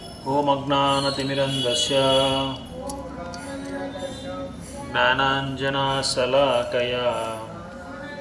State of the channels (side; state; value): both; identical; correlation 1.00